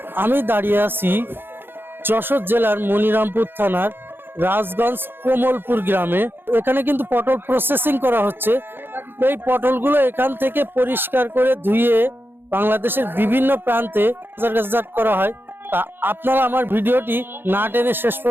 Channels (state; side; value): late; left; 0.10 ms